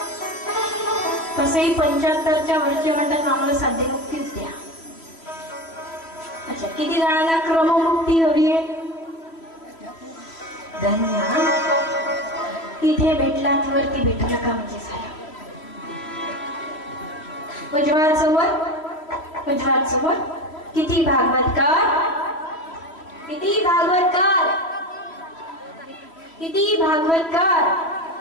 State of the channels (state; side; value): late; right; 3.1 ms